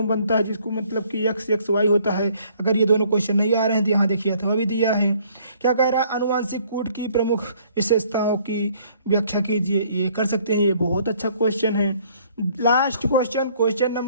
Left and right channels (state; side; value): inverted; both; correlation -0.61